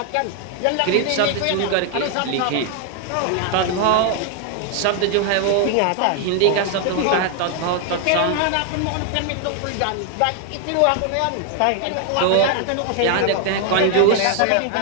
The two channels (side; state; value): both; different; correlation 0.00